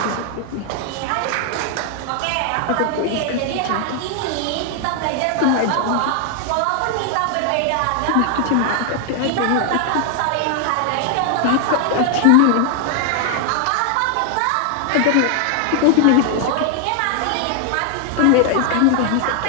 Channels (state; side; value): different; both; correlation 0.00